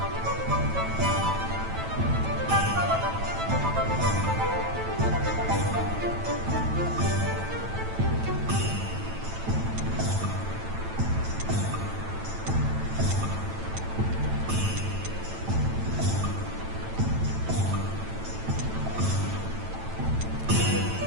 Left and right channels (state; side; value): late; left; 9.0 ms